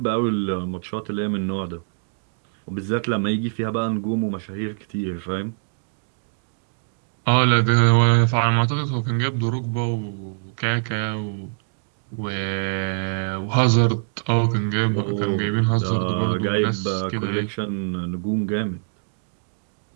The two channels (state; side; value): silent; left; digital silence